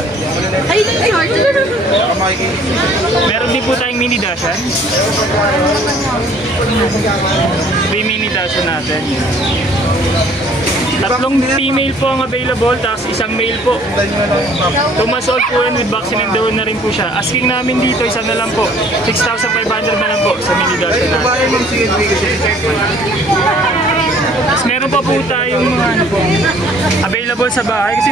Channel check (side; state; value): both; normal; correlation 0.56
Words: Meron din po tayong mini dashan. 3 mini dashan natin. 3 female po ang available, tapos isang male po. 2 months old po yan with vaccine and deworm na rin po siya. Asking namin dito, isa na lang po. 6,500 na lang po sa mini dashan natin. Tapos meron pa po tayong mga ano po, available sa bahay. Kasi